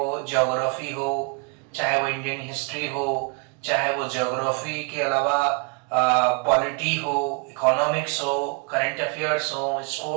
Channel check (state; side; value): quieter; left; 36.2 dB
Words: ज्योग्राफी हो, चाहे वो इंडियन हिस्ट्री हो, चाहे वो ज्योग्राफी के अलावा पॉलिटी हो, इकोनॉमिक्स हो, करंट अफेयर्स हो,